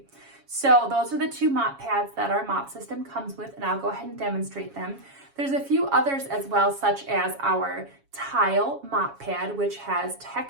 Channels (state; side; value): late; left; 7.2 ms